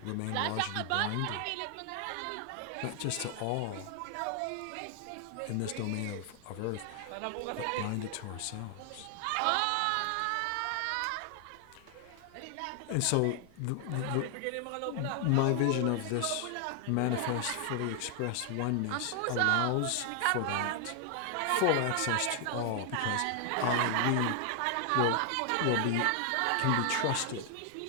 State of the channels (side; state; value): both; different; correlation 0.00